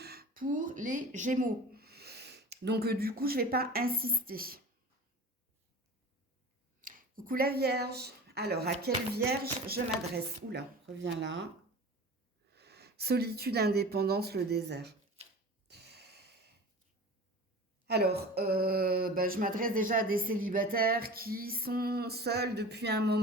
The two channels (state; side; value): normal; both; correlation 0.37